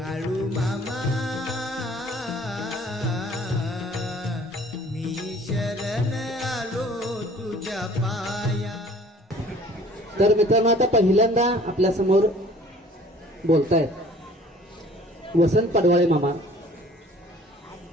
मामा मी शरण आलो तुझ्या पाया. तर मित्रांनो, आता पहिल्यांदा आपल्या समोर बोलतायत वसंत पडवाळे मामा.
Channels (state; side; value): normal; both; correlation 0.52